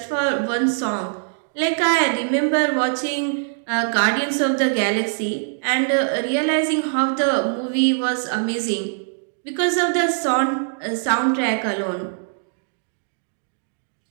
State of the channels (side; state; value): left; silent; digital silence